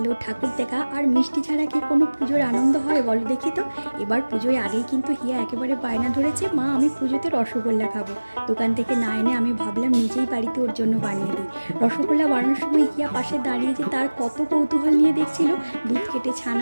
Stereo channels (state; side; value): inverted; both; correlation -1.00